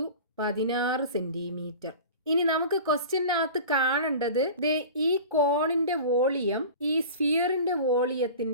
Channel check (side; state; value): both; inverted; correlation -0.37